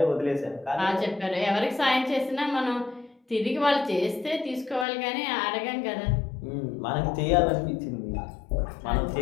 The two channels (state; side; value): drops out; right; at 4.9 s